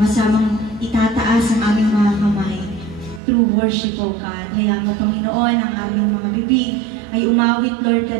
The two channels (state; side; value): drops out; left; at 3.2 s